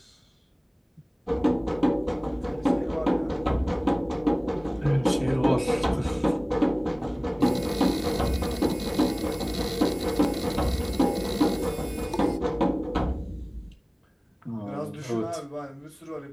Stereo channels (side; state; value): both; identical; correlation 1.00